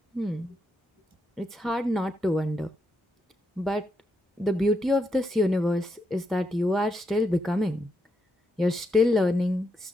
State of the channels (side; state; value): both; normal; correlation 0.82